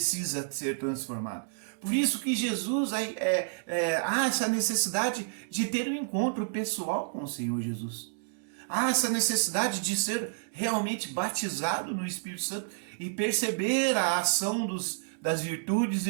ser transformado. Por isso que Jesus há essa necessidade de ter um encontro pessoal com o Senhor Jesus. Há essa necessidade de ser realmente batizado no Espírito Santo e perceber a ação das virtudes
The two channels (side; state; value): left; silent; digital silence